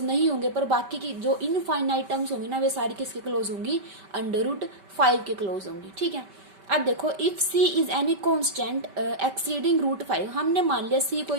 नहीं होंगे, पर बाकी की जो इनफाइनाइट टर्म्स होंगी ना वे सारी किसके क्लोज होंगी, अंडर रूट फाइव के क्लोज होंगी। ठीक है, अब देखो if c is any constant exceeding root five, हमने मान लिया c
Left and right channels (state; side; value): late; left; 5.2 ms